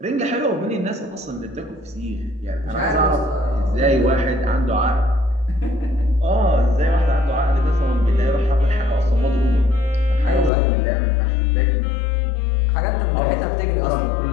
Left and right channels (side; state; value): right; drops out; at 10.5 s